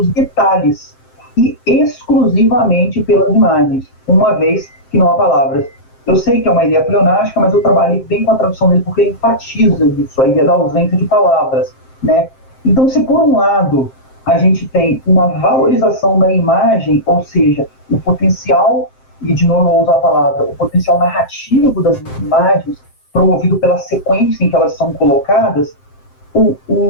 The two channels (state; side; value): late; right; 7.6 ms